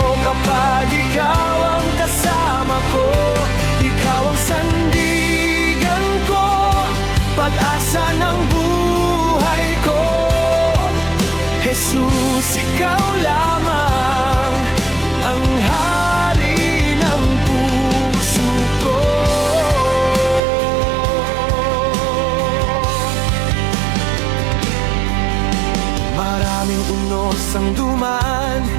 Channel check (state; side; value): drops out; left; at 20.4 s